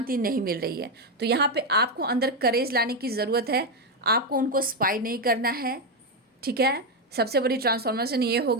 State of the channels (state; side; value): normal; both; correlation 0.06